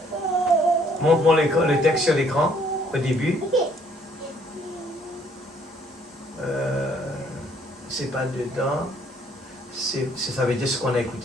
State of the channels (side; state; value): both; normal; correlation 0.64